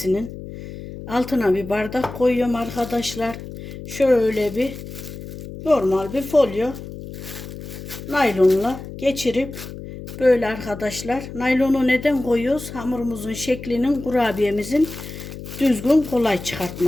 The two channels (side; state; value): left; noise; hum, 11 dB below the sound